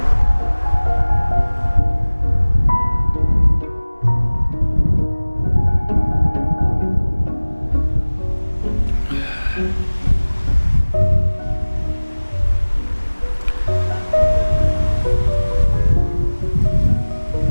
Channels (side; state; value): both; inverted; correlation -1.00